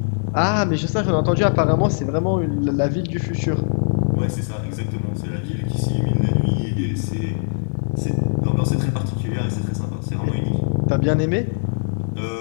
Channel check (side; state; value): right; silent; 65 dB below the other